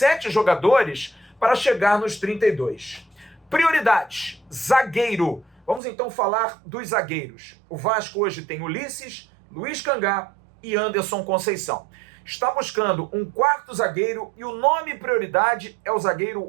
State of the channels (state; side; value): drops out; left; at 5.8 s